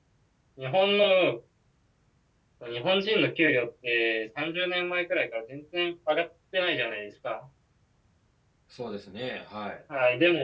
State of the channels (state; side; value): identical; both; correlation 1.00